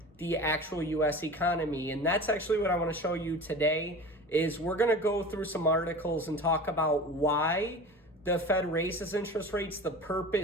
the actual US economy. And that's actually what I want to show you today is we're going to go through some articles and talk about why the Fed raises interest rates, the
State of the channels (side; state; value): both; normal; correlation 0.35